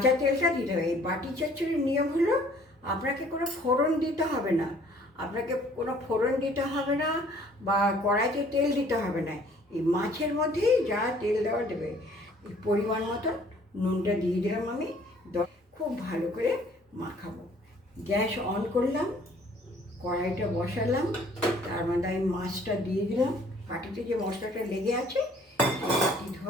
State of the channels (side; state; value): both; normal; correlation 0.57